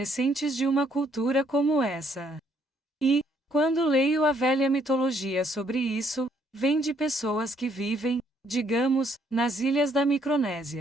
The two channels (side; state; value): both; normal; correlation 0.68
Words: de uma cultura como essa. E, quando leio a velha mitologia sobre isso, vem de pessoas que vivem, digamos, nas ilhas da